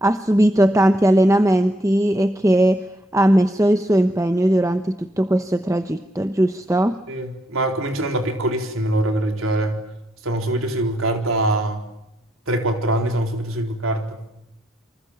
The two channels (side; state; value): both; normal; correlation 0.77